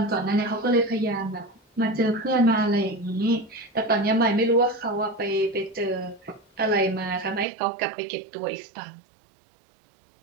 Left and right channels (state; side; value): drops out; left; at 7.5 s